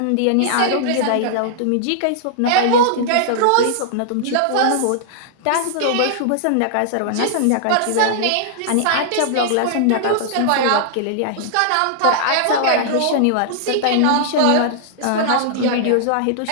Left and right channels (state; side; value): different; both; correlation -0.01